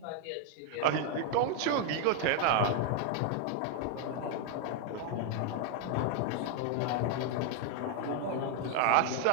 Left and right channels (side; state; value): both; different; correlation 0.00